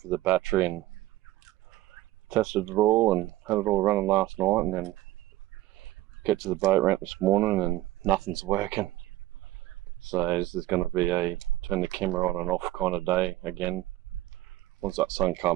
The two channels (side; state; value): left; quieter; 16.2 dB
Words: the battery, and tested it all and had it all running last night, and then get to the boat ramp this morning and nothing's working. So this is going to be a turn the camera on and off kind of day again. Once that sun